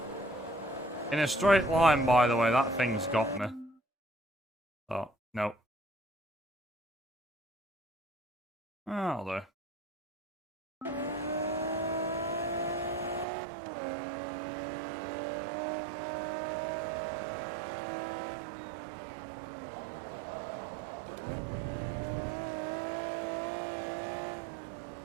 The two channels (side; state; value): left; drops out; at 13.2 s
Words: In a straight line, by the way, that thing's got me. Oh, no. Oh, there.